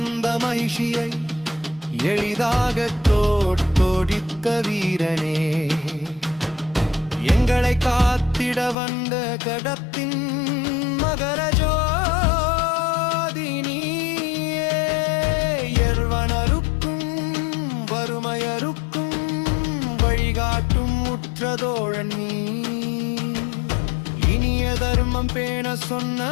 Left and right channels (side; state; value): right; drops out; at 8.8 s